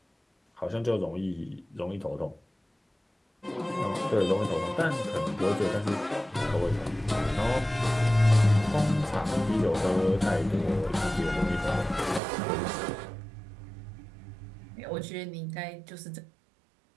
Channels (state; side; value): drops out; left; at 12.2 s